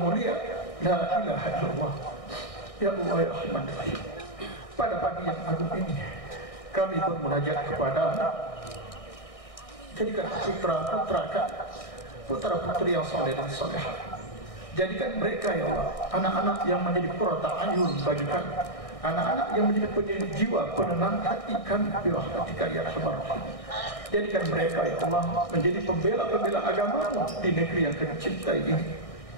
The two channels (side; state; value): right; late; 1.6 ms